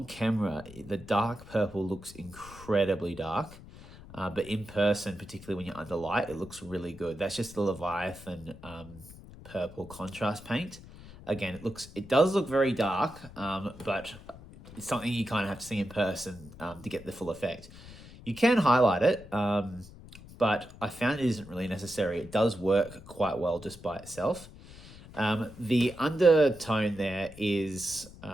camera, the dark purple looks incredibly dark, but in person, particularly when you're under light, it looks really good. That's just the Leviathan purple contrast paint. Again, it does look very dark, but it's something you kind of have to see in person to get the full effect. You can highlight it, but I found it isn't really necessary. It does work quite well just by itself. The undertone there is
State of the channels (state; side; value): noise; left; rumble, 18 dB below the sound